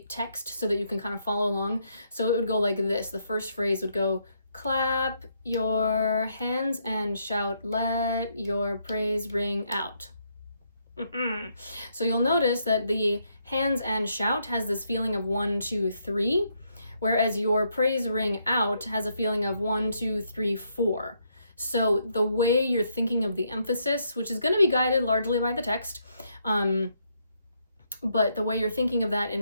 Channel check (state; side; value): inverted; both; correlation -0.75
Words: text so that you can kind of follow along. So it would go like this. The first phrase would go, clap your hands and shout, let your praise ring out. So you'll notice that the hands and shout has this feeling of 1, 2, 3. Whereas your praise ring out has a feeling of 1, 2, 3, 4. So the way you're thinking of the emphasis, which is going to be guided largely by the text, but the way you're thinking of that